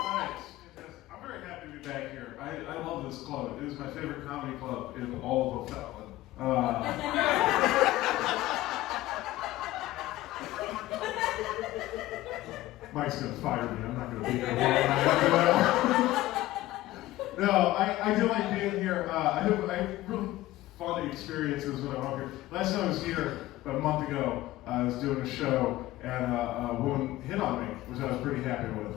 I'm very happy to be back here. I love this club. It is my favorite comedy club in all of O'Fallon. Mike's gonna fire me. I'm not gonna be here long after that. No, I do like being here. I have really fun experiences when I'm up here. Last time I was here about a month ago, I was doing a show and a woman hit on me, which I was pretty happy with.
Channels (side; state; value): right; quieter; 16.6 dB